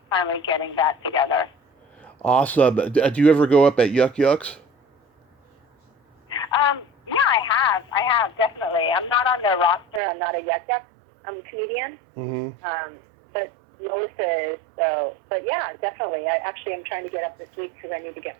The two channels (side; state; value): left; drops out; at 10.0 s